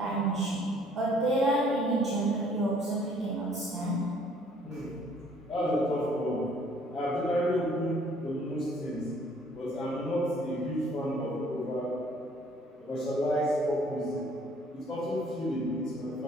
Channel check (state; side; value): normal; both; correlation 0.60